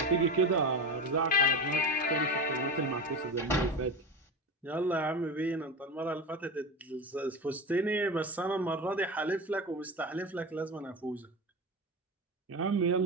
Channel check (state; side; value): normal; both; correlation 0.24